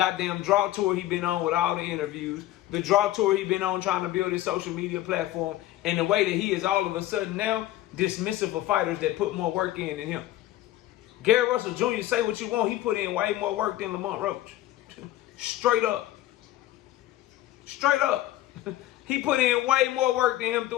draw tour he been on with all the interviews, the draw tour he been on trying to build his social media platform, and the way that he is all of a sudden now dismissive of fighters that put more work in than him. Gary Russell Jr., say what you want, he put in way more work than Lamont Roach. Straight up. Straight up. He put in way more work than him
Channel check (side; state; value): right; quieter; 14.8 dB